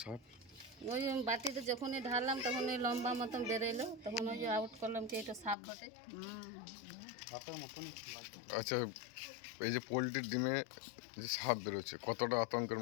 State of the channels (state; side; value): drops out; right; at 5.6 s